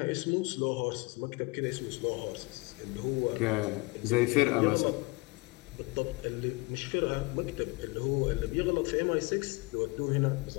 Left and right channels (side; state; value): right; quieter; 26.3 dB